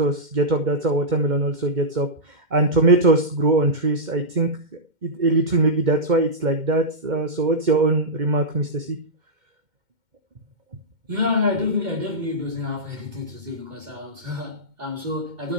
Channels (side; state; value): left; late; 2.1 ms